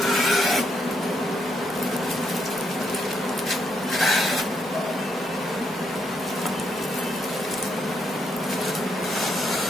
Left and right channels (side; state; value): both; normal; correlation 0.77